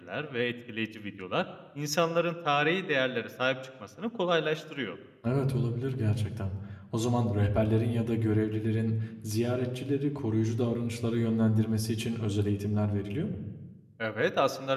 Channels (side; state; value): both; identical; correlation 1.00